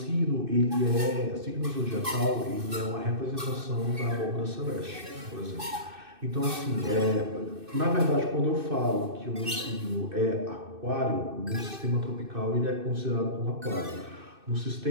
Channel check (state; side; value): late; left; 2.6 ms